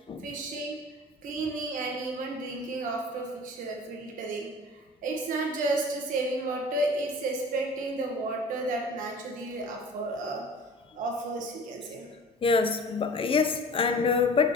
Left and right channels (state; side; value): normal; both; correlation 0.42